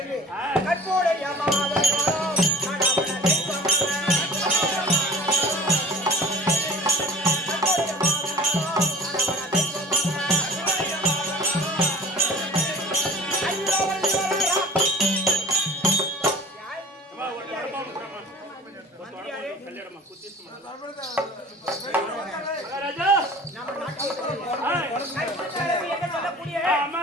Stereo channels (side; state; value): both; normal; correlation 0.43